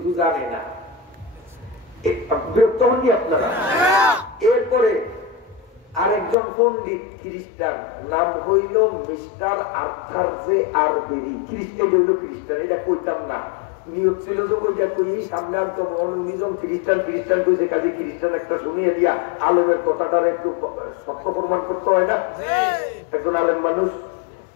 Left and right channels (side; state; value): right; drops out; at 6.4 s